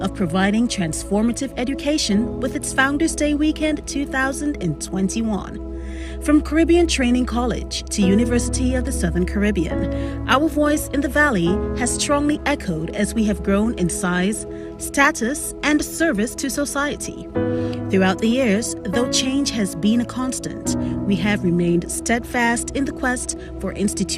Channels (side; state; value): both; identical; correlation 1.00